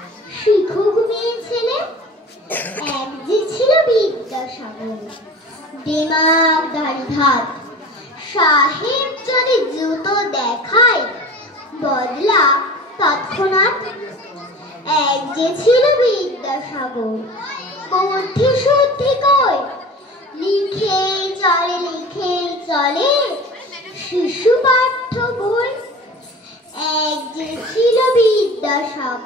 শিখুক মেয়ে ছেলে। এক যে ছিল বিদ্যাসাগর, দিমাগ ধারি ধাত, সাহেব যদি জুতো দেখায় বদলা তৎক্ষণাৎ। এক যে ছিল বিদ্যাসাগর, বুদ্ধি শুদ্ধি কই, লিখেই চলে শিশু পাঠ্য বই। এক যে ছিল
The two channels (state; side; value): normal; both; correlation 0.38